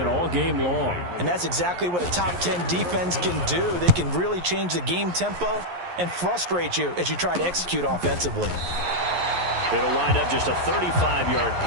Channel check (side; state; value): left; late; 11 ms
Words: all game long. And that's exactly what a top 10 defense can do. They can really change the game tempo and frustrate you as you try to execute offensively. It'll wind up just a 35-yard